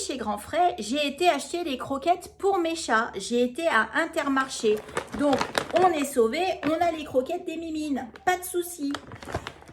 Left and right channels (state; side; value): identical; both; correlation 1.00